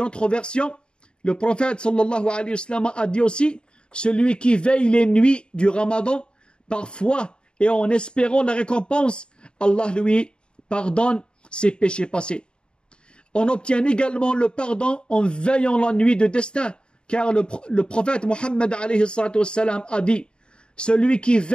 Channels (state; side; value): late; right; 0.051 ms